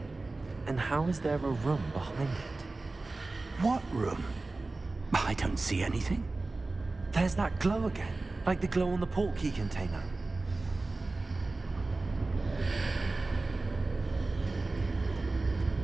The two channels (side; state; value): left; quieter; 3.3 dB